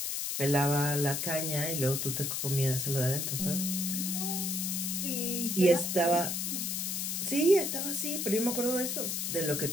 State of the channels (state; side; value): noise; left; hiss, 1 dB below the sound